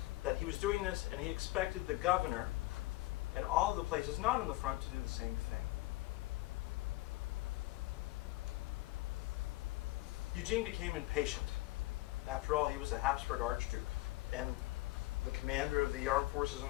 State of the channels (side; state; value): right; quieter; 19.3 dB